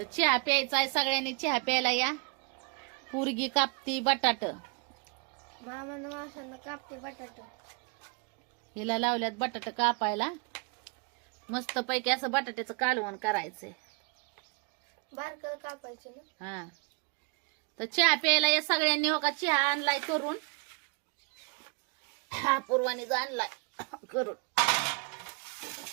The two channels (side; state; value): left; quieter; 32.8 dB